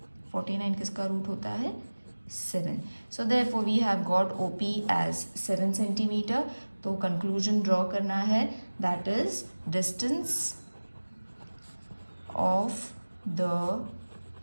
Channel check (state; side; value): inverted; both; correlation -1.00